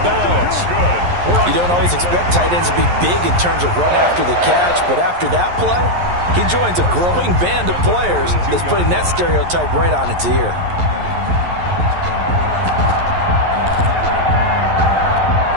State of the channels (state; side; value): late; left; 11 ms